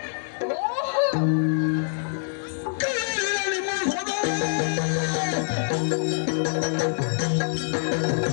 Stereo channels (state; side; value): silent; right; 59 dB below the other